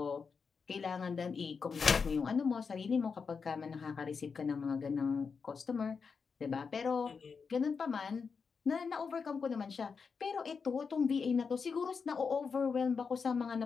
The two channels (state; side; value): quieter; right; 5.5 dB